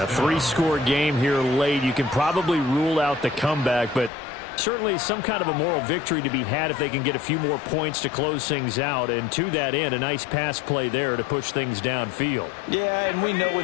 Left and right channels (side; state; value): right; drops out; at 4.1 s